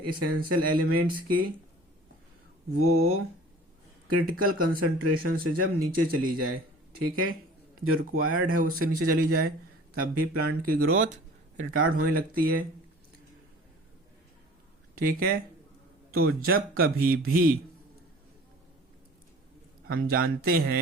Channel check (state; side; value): normal; both; correlation 0.45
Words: एसेंशियल एलिमेंट्स की वो क्रिटिकल कंसंट्रेशन से जब नीचे चली जाए, ठीक है, जो रिक्वायर्ड है उससे नीचे चली जाए, तब भी प्लांट की ग्रोथ रिटार्ड होने लगती है, ठीक है। तो जब कभी भी हम जानते